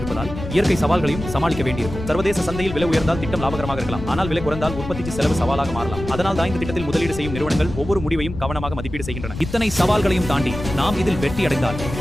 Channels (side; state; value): left; noise; rumble, 9 dB below the sound